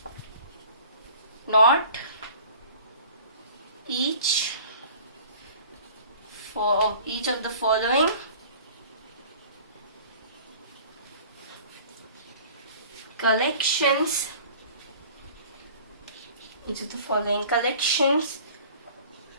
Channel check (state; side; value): inverted; both; correlation -0.46